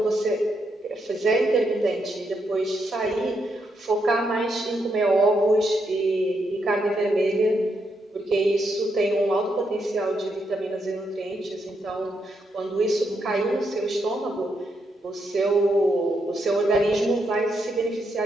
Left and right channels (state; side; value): normal; both; correlation 0.80